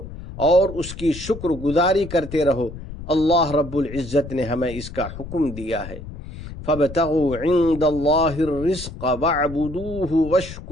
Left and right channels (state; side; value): noise; left; rumble, 12 dB below the sound